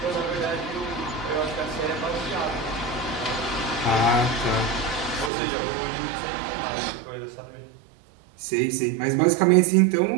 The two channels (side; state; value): left; drops out; at 5.3 s